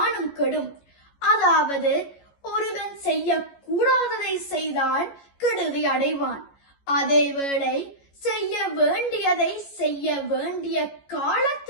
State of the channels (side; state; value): right; late; 14 ms